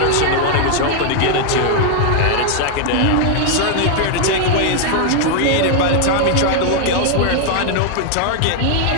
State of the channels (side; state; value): both; different; correlation 0.00